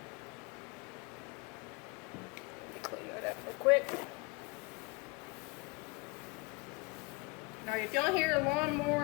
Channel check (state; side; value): quieter; right; 27.3 dB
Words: Let me clean that up real quick. Now if y'all hear a